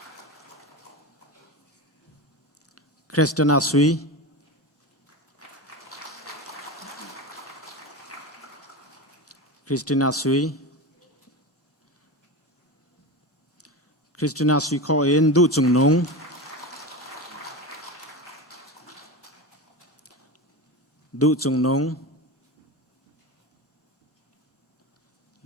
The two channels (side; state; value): both; normal; correlation 0.24